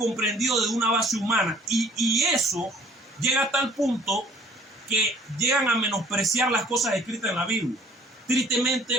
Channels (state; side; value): normal; both; correlation 0.56